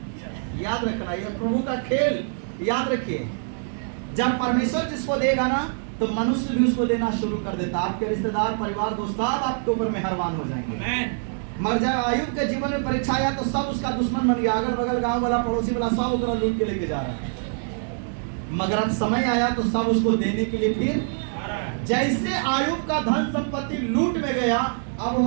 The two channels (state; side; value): silent; left; digital silence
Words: याद रखना, ये प्रभु का खेल याद रखिए। जब परमेश्वर जिसको देगा ना तो मनुष्य भी उसको देना शुरू कर देता। आपके रिश्तेदार, परिवार, दोस्त सब आपके ऊपर मेहरबान हो जाएंगे। मर जाए आयुब के जीवन में परीक्षा आया तो सब उसका दुश्मन बन गया, अगल बगल गांव वाला, पड़ोसी वाला, सब उसको लूट के लेके जा रहा है। मगर अब समय आया तो सब उसको देने के लिए फिर जैसे आयुब का धन संपत्ति लूट में गया, अब